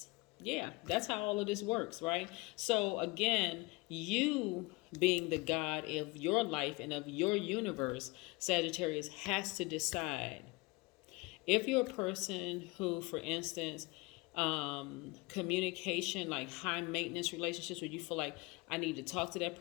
Yeah, that's how all of this works, right? So again, you being the God of your life and of your universe, Sagittarius, has to decide If you're a person who, for instance, communication, like high maintenance relationships where you feel like I need to talk to that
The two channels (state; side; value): quieter; right; 24.9 dB